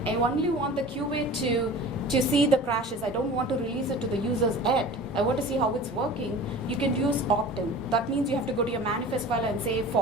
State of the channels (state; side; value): normal; both; correlation 0.39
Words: I only want the QA to see the crashes. I don't want to release it to the users yet. I want to see how it's working. You can use opt-in. That means you have to go to your manifest file and say